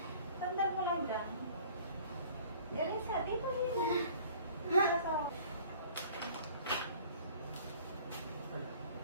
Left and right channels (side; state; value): both; inverted; correlation -0.50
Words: Tandaan mo lang dyan. Elisa, dito yun.